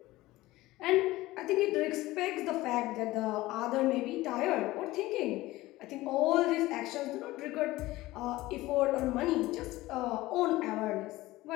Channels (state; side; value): quieter; right; 18.1 dB